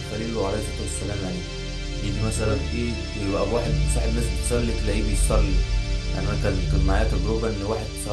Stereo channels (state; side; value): identical; both; correlation 1.00